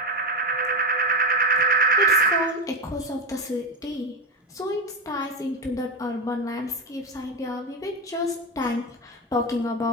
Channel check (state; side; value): normal; both; correlation 0.15